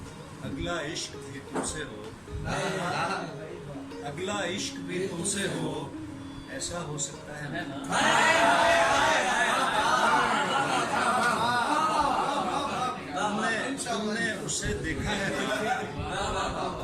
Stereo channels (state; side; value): identical; both; correlation 1.00